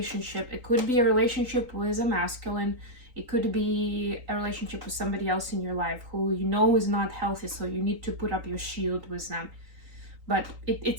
It could be a relationship with a masculine. It could be a relationship with somebody else in your life who you know is not healthy, so you need to put up your shield with them. But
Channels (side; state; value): left; late; 3.8 ms